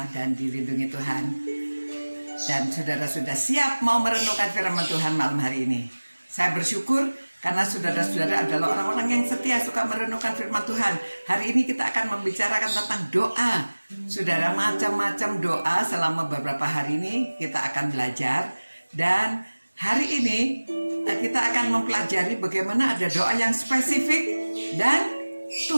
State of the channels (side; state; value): both; inverted; correlation -1.00